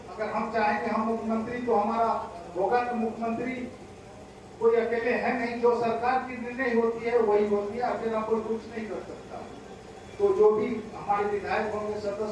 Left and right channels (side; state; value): both; identical; correlation 1.00